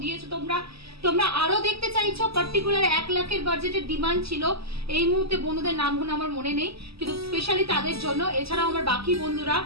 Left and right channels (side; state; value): left; late; 0.77 ms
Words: দিয়েছো তোমরা। তোমরা আরো দেখতে চাইছো, পার্টিকুলার 1 লাখের বাজেটের ডিমান্ড ছিল। এই মুহূর্তে বন্ধুদের নামগুলো আমার মনে নেই, কিন্তু স্পেশালি তাদের জন্য। এছাড়াও আমার বাকি বন্ধুরা